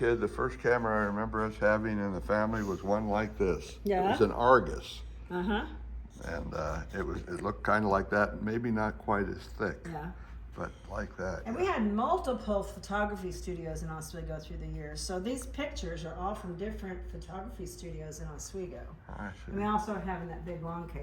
the first camera I remember us having in the family was one like this. Yeah. It was an Argus. Uh-huh. And it looked kind of like that, maybe not quite as thick, Yeah. but like that. And we had multiple photography studios in Oswego through the years. So these pictures are all from different photography studios in Oswego. I And we see. also have in that big long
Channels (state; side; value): identical; both; correlation 1.00